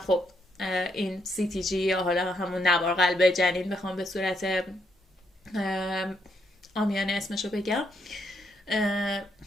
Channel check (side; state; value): both; normal; correlation 0.77